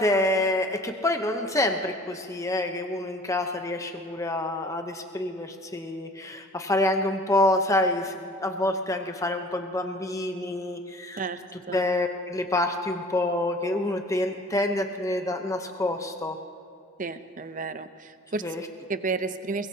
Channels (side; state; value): both; normal; correlation 0.47